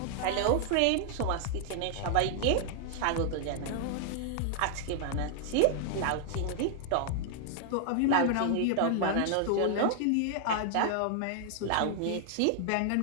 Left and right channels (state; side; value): different; both; correlation 0.00